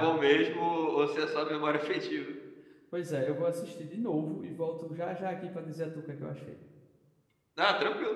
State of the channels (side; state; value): both; identical; correlation 1.00